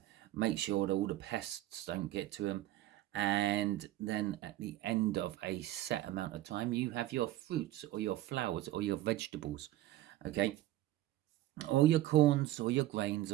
make sure that all the pests don't get to them. And then at the end of a set amount of time, you have your fruits or your flowers or your vegetables, okay? Or your corns or your grains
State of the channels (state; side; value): quieter; left; 14.9 dB